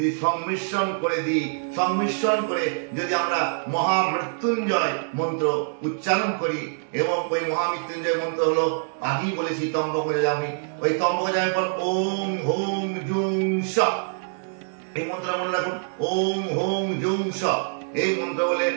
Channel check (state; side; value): silent; left; digital silence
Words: সংমিশ্রণ করে যদি আমরা মহামৃত্যুঞ্জয় মন্ত্র উচ্চারণ করি, এবং ওই মহামৃত্যুঞ্জয় মন্ত্র হলো আগেই বলেছি তম্বকজামি। ওই তম্বকজামি পর ওম হোম জুং স, এই মন্ত্র মনে রাখুন, ওম হোম জুং স। এই মন্ত্র বলে